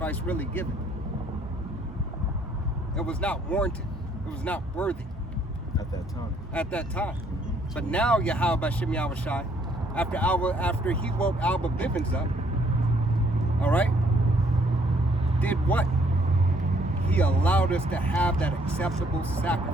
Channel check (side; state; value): both; normal; correlation 0.65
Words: really given. It was not warranted. It was not worthy. At that time. At that time. But now, Yahweh Ba'ashem Yahushai, after he woke Alba Bivens up, all right, did what? He allowed us to have that acceptable